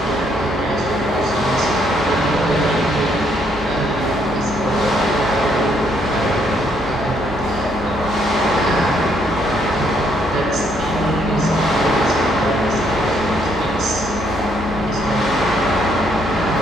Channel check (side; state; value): both; normal; correlation 0.70